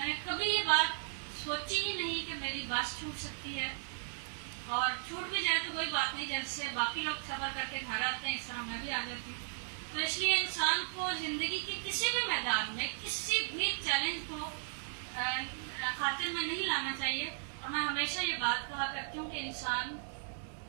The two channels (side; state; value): left; silent; digital silence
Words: نے کبھی یہ بات سوچی ہی نہیں کہ میری بس چھوٹ سکتی ہے، اور چھوٹ بھی جائے تو کوئی بات نہیں، جیسے باقی لوگ سفر کر کے گھر آتے ہیں اس طرح میں بھی آ جاتی ہوں۔ تو اس لیے انسان کو زندگی کے کسی بھی میدان میں کسی بھی چیلنج کو خاطر میں نہیں لانا چاہیے، اور میں ہمیشہ یہ بات کہا کرتی ہوں کہ انسان